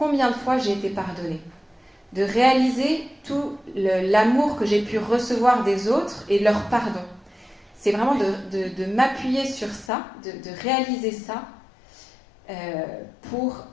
de fois j'ai été pardonnée. De réaliser tout l'amour que j'ai pu recevoir des autres et leur pardon. C'est vraiment de m'appuyer sur ça, de réaliser ça pour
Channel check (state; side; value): drops out; right; at 9.9 s